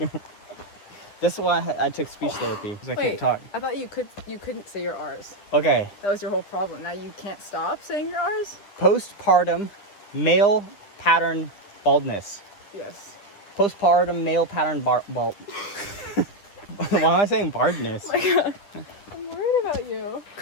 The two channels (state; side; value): late; right; 9.9 ms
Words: That's why I took speech therapy, because I can't talk. I thought you couldn't say your R's. Okay. That was your whole problem. Now you can't stop saying your R's? Postpartum male pattern baldness. Yes. Postpartum male pattern bald. Why am I saying baldness? Oh my God. I'm worried about you.